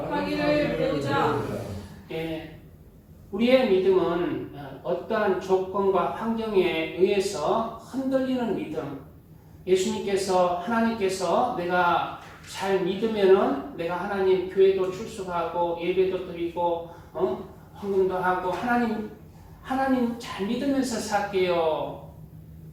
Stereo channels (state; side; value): identical; both; correlation 1.00